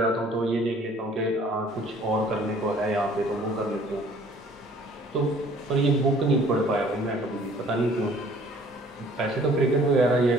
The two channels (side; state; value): both; normal; correlation 0.55